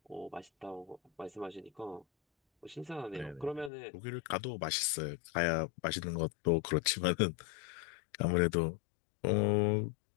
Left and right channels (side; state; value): right; drops out; at 3.7 s